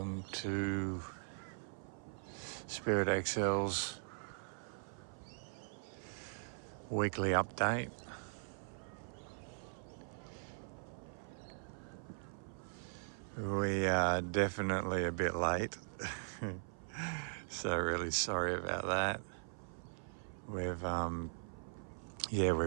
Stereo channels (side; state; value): left; silent; 51 dB below the other